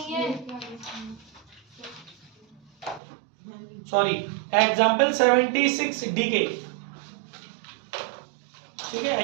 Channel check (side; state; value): left; drops out; at 3.0 s